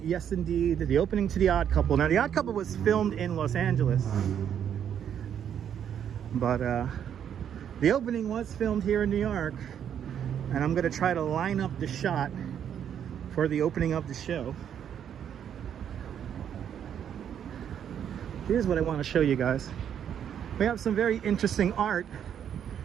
indeed, the opening to The Odd Couple. Now The Odd Couple was filmed in Los Angeles, but the opening was filmed here in New York, and I'm gonna try to line up the shot for the opening of the show. Here's what I want to show you guys. We have some very interesting art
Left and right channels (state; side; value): quieter; left; 9.0 dB